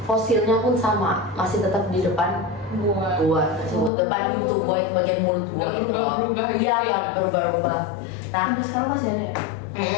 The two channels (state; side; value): drops out; right; at 3.9 s